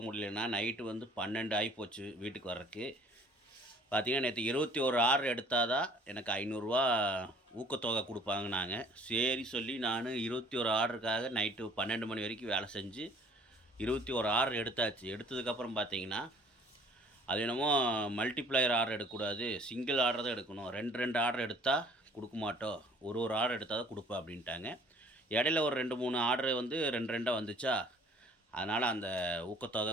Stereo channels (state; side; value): normal; both; correlation 0.54